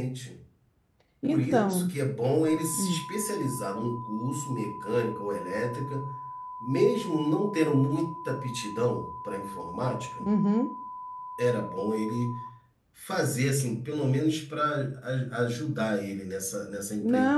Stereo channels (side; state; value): both; identical; correlation 1.00